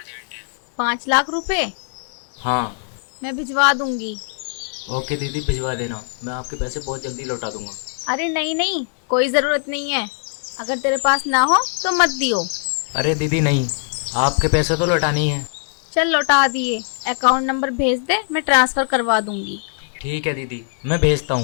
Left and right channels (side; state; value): right; silent; 62 dB below the other